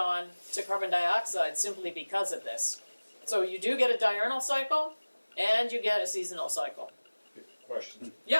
to carbon dioxide simply because of this. So you do get a diurnal cycle and you get a seasonal cycle. Question.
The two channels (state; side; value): inverted; both; correlation -1.00